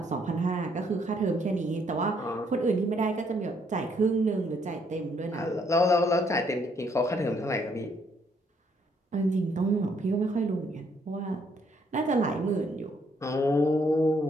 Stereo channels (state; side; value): normal; both; correlation 0.69